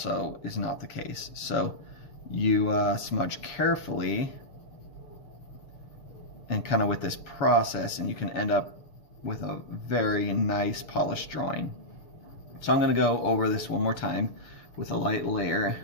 is not the case. So you smudge carefully and kind of with this process, and you can end up with a very nice polished drawing. So I'm going to go over this one more time with a light layer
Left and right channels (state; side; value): late; right; 6.7 ms